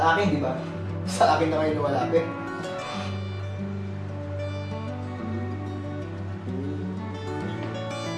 akin, di ba? Sa akin na ngayon lumalapit.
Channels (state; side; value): identical; both; correlation 1.00